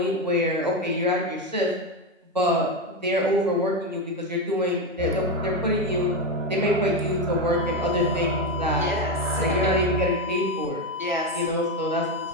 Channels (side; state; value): both; normal; correlation 0.12